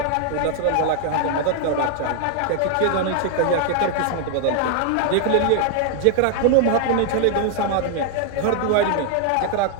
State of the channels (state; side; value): different; both; correlation 0.00